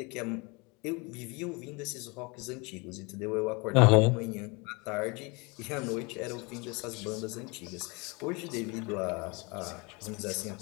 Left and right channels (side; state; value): right; quieter; 28.3 dB